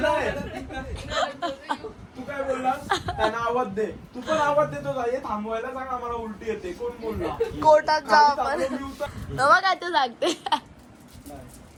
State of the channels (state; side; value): identical; both; correlation 1.00